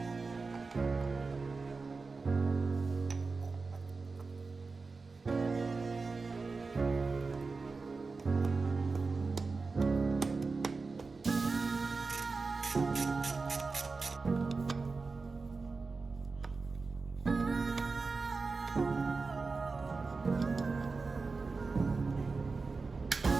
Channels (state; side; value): quieter; left; 4.2 dB